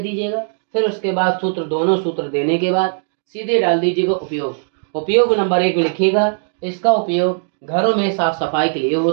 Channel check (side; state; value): left; silent; digital silence